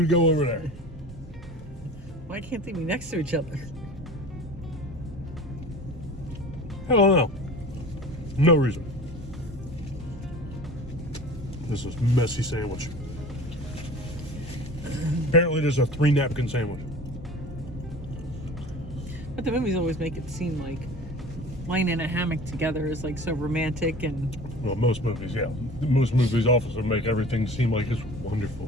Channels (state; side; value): normal; both; correlation 0.40